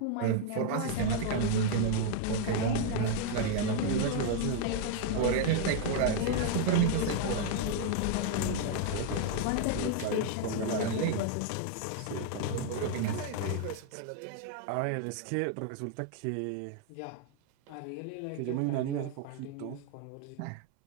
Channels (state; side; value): different; both; correlation 0.00